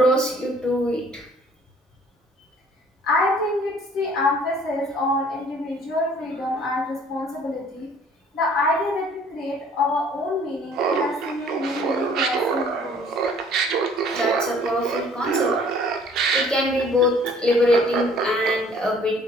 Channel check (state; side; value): normal; both; correlation 0.55